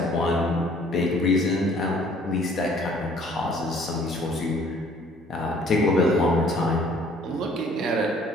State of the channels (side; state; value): both; normal; correlation 0.57